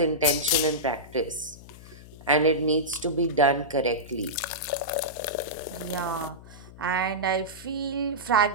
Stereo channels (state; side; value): noise; left; hum, 18 dB below the sound